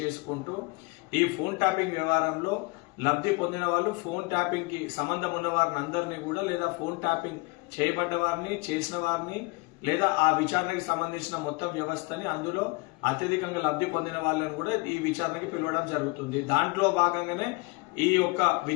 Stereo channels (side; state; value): right; quieter; 26.3 dB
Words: ఈ ఫోన్ ట్యాపింగ్ వ్యవహారంలో లబ్ధి పొందిన వాళ్ళు, ఫోన్ ట్యాపింగ్ కి సంబంధం ఉన్న వారిని అందరినీ కూడా, లేదా ఫోన్ ట్యాపింగ్ చేయబడ్డ వారిని, చేసిన వారిని, లేదా ఆ విచారణకి సంబంధించిన మొత్తం వ్యవస్థని, అందులో అత్యధికంగా లబ్ధి పొందిన వాళ్ళని కూడా ఈ విచారణకి పిలవడం జరుగుతుంది. దాంట్లో భాగంగానే ఈ యొక్క